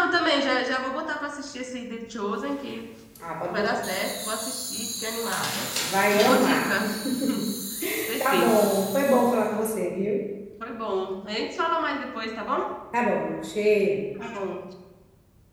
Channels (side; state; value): both; identical; correlation 1.00